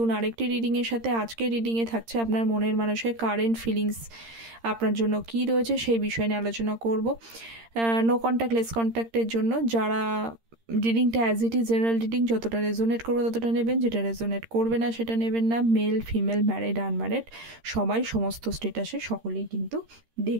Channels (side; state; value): left; late; 13 ms